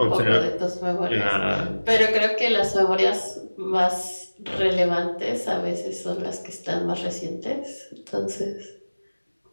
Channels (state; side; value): inverted; both; correlation -1.00